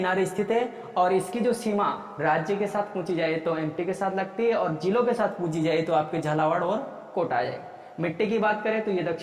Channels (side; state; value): both; identical; correlation 1.00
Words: स्थित है, और इसकी जो सीमा राज्य के साथ पूछी जाए तो MP के साथ लगती है, और जिलों के साथ पूछी जाए तो आपके झालावाड़ और कोटा आ जाएगा। मिट्टी की बात करें तो ये